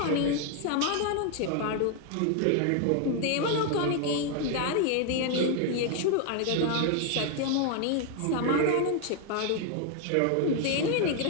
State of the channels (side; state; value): both; different; correlation 0.01